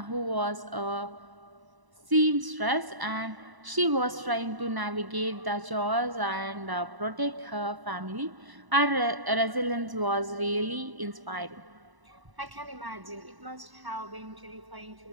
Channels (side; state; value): left; late; 1.0 ms